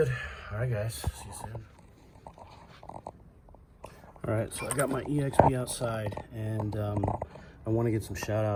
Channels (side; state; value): both; identical; correlation 1.00